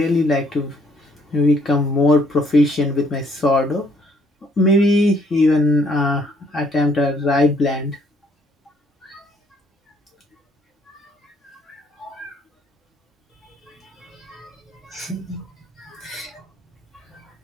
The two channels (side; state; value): both; normal; correlation 0.65